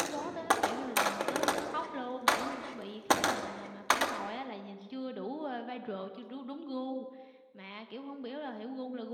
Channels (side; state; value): both; identical; correlation 1.00